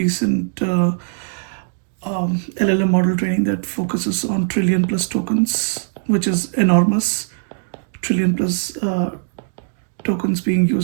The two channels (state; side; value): silent; left; digital silence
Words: LLM model training that focuses on trillion plus tokens, which is enormous. Trillion plus tokens being